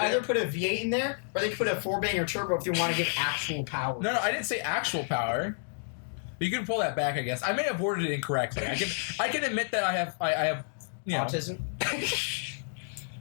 put either in? put a V8 in there, or they can put a 4-banger turbo if you want to give actual power. No, I didn't say actual power. You can pull that back, I guess. I may have worded it incorrectly. I can admit that I have you know. Autism.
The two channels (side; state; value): right; silent; digital silence